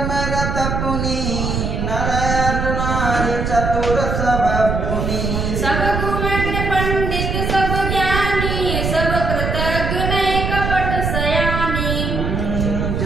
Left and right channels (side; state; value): right; noise; rumble, 1 dB below the sound